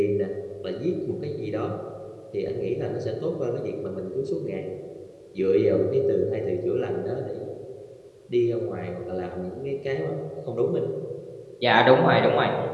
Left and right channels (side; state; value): both; identical; correlation 1.00